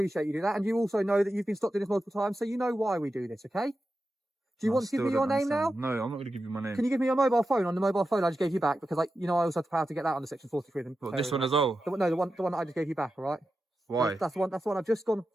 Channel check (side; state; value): both; normal; correlation 0.91